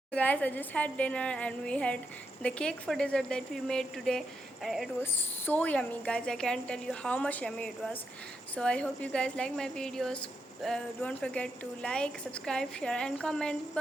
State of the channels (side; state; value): both; normal; correlation 0.83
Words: Guys, I just had dinner and we had the cake for dessert that we made today, and it was so yummy, guys. I can't tell you how much yummy it was. So I hope you guys like my videos. Don't forget to like, subscribe, share and comment.